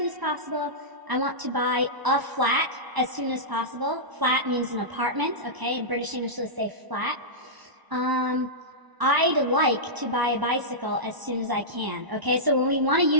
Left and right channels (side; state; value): left; late; 1.0 ms